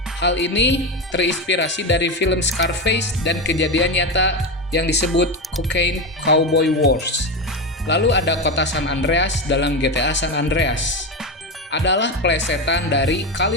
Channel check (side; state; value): both; normal; correlation 0.17